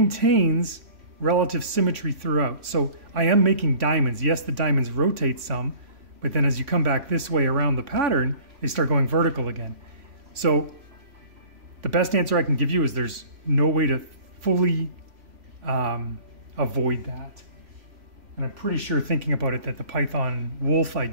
relative symmetry throughout. So I am making diamonds. Yes, the diamonds rotate some, but then as you come back this way around the pattern, they start going vertical again. So the best answer I can give you is there's no way to fully avoid that. And I'm pretty sure, thinking about it, that the Python Wolf I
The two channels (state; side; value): late; left; 3.1 ms